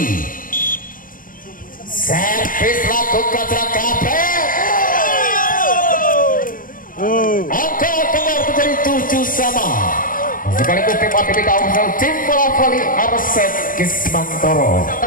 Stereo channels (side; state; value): right; late; 0.40 ms